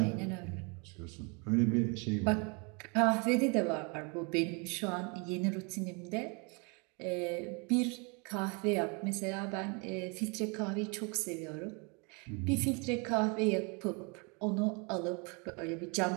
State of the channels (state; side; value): quieter; left; 32.5 dB